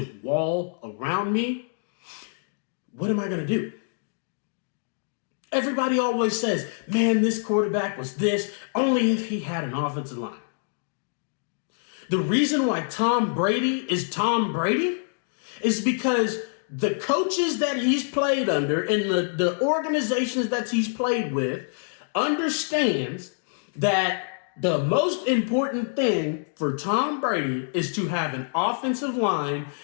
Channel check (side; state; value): right; silent; digital silence